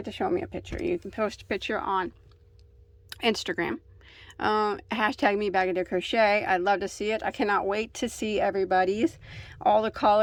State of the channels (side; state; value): both; identical; correlation 1.00